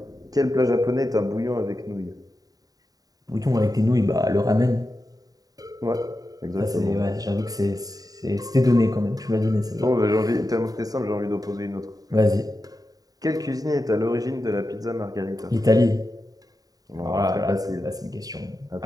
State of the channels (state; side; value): late; left; 0.18 ms